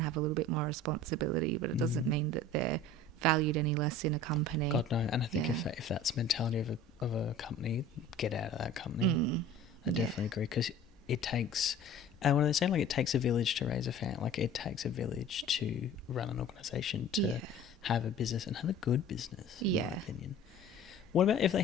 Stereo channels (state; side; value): normal; both; correlation 0.43